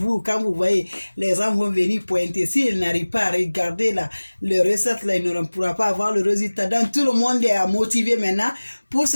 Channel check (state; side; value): inverted; both; correlation -1.00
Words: quand vous voyez, les gens vont venir pointer. S'ils n'arrivent pas à regarder le recette, là, ils ne pourront pas avoir le résultat. Donc, tout le monde est motivé maintenant pour